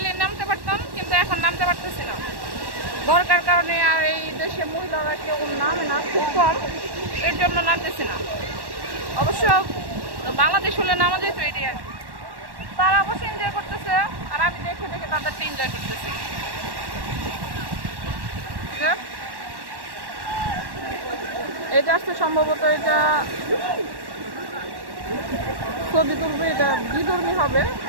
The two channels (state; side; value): late; left; 1.1 ms